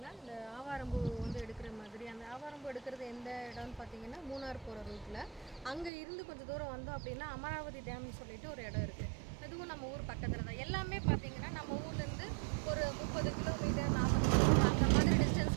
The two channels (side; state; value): left; drops out; at 5.9 s